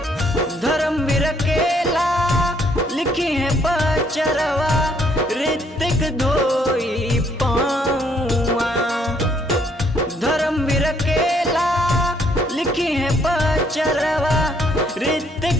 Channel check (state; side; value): normal; both; correlation 0.68